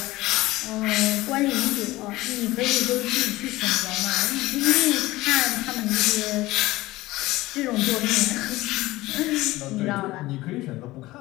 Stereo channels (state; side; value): quieter; right; 18.5 dB